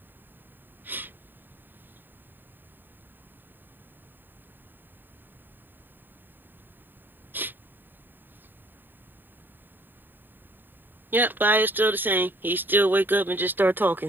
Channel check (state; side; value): late; left; 0.092 ms